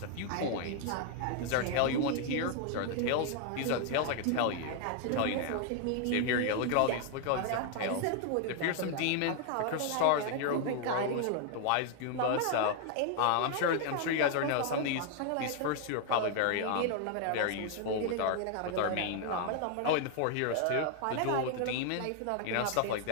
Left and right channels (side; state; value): both; different; correlation 0.00